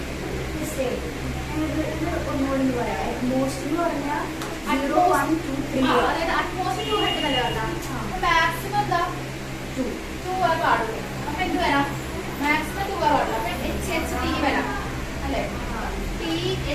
Maximum എന്താ 2 പാടുള്ളൂ. അപ്പൊ എന്ത് വരാം? മാക്സിമം 2 പാടുള്ളൂ. അപ്പൊ HHT വരാം അല്ലെ?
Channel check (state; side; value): identical; both; correlation 1.00